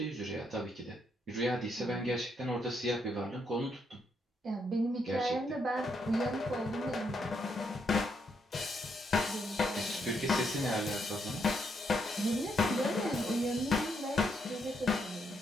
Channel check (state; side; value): normal; both; correlation 0.77